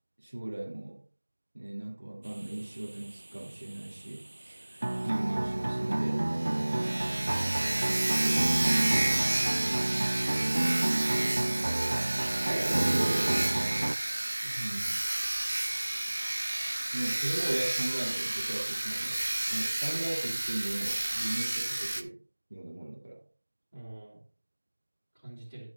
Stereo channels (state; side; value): inverted; both; correlation -1.00